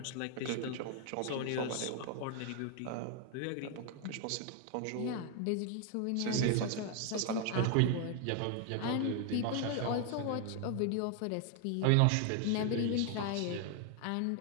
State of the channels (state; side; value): different; both; correlation 0.00